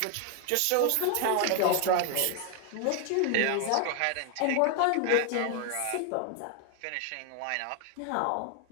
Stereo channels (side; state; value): both; different; correlation 0.01